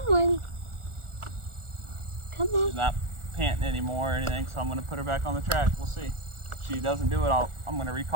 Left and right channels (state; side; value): late; left; 1.4 ms